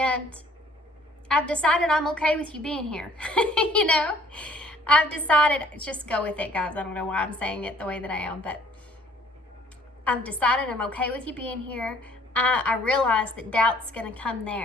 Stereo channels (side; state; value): both; normal; correlation 0.58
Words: I've decided I'm okay with you being here. You know, I've decided, just go with it, guys. I don't know why I'm saying it the way that I am, but I've decided I'm okay with you being here. I realize that doubt's going to come